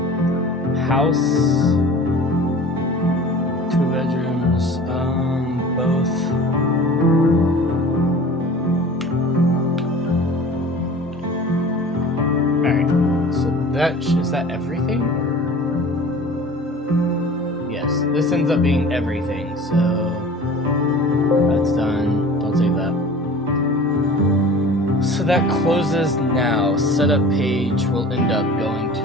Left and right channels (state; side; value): normal; both; correlation 0.42